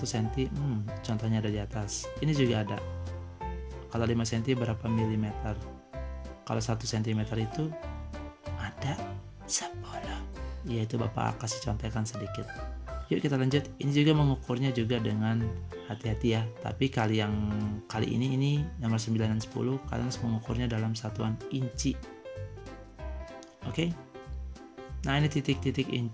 cm? Contohnya ada di atas. Ini juga ada. Kalau 5 cm berapa milimeter? Kalau 1 cm itu ada 10. Ya, itu Bapak kasih contekan sedikit. Yuk kita lanjut. Ini juga mengukurnya juga dengan hati-hati ya. Tapi kali ini nomor 9 dan 10 kalian harus mengukurnya dalam satuan inci. Oke? Nah, ini titik-titik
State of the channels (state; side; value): identical; both; correlation 1.00